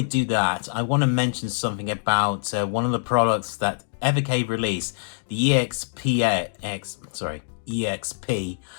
do that, I want to mention something about one of the products that Evercade released, the EXP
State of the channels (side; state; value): right; silent; digital silence